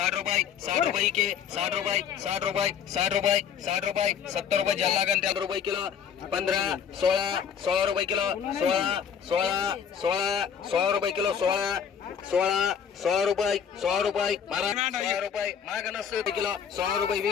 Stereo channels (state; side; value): quieter; right; 7.8 dB